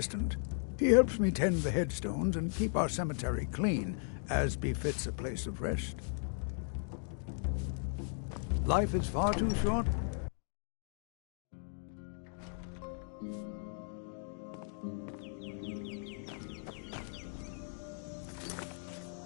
He helps me tend the headstones and keep our cemetery clean, as befits a place of rest. Life is far too short.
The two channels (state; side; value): silent; right; 53 dB below the other